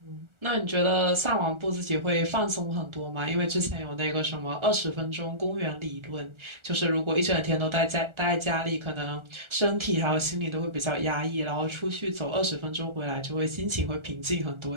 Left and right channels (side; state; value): left; late; 1.4 ms